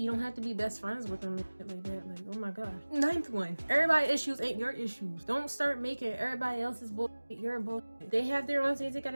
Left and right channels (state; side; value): inverted; both; correlation -1.00